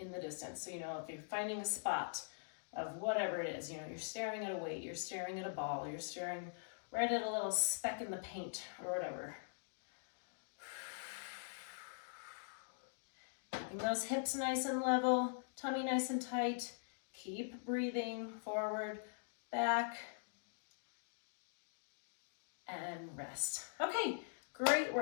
the distance. So, if you're finding a spot of whatever it is, you're staring at a weight, you're staring at a ball, you're staring right at a little speck in the paint or whatever. Keeping those hips nice and level, tummy nice and tight. Keep breathing forward, back, and rest. Okay. Great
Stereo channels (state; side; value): silent; right; digital silence